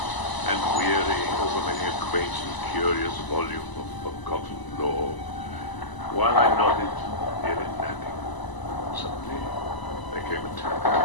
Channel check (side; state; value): right; late; 1.0 ms